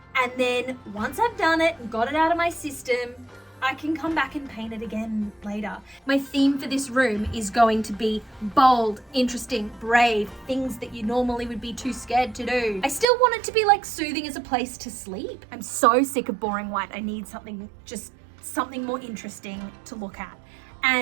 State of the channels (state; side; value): drops out; left; at 13.1 s